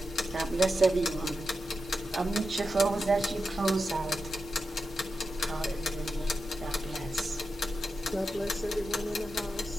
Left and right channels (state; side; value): normal; both; correlation 0.89